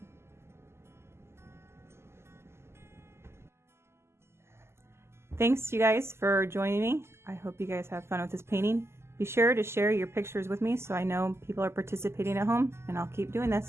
Thanks you guys for joining me. I hope you guys have fun with this painting. Be sure to share your pictures with me so I know people are participating at home, and I'll keep doing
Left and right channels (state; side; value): late; left; 0.12 ms